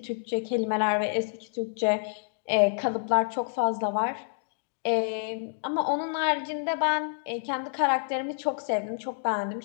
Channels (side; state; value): right; silent; digital silence